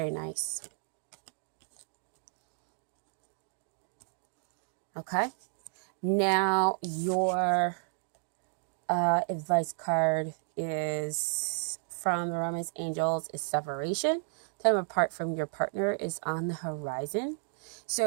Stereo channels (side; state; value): left; silent; digital silence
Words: nice. Okay. Now, your advice card is from the Romance Angels is separation. Time apart from your partner is on the horizon.